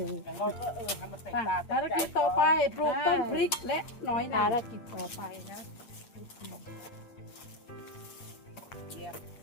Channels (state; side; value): late; right; 8.5 ms